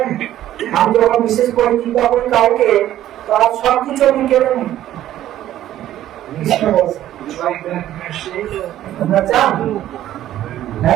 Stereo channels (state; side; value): quieter; left; 12.8 dB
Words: আমি যখন বিশেষ করে টিকা করি কাউকে তার সব কিছু আমি কেড়ে নিই। কৃষ্ণ বলছে You like that mercy? তোমরা চান?